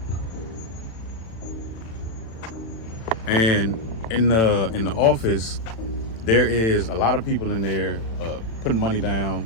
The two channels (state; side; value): late; right; 36 ms